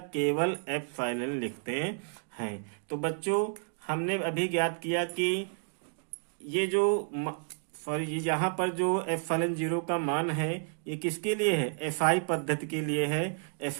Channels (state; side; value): silent; left; 57 dB below the other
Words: केवल F0 लिखते हैं। तो बच्चों हमने अभी ज्ञात किया कि ये जो सॉरी, ये यहाँ पर जो एप्सिलॉन जीरो का मान है ये किसके लिए है? एसआई पद्धति के लिए है।